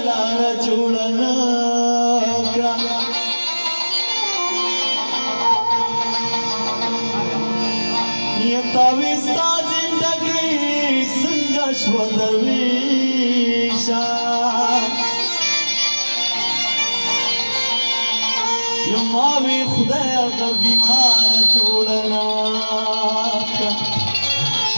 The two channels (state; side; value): inverted; both; correlation -1.00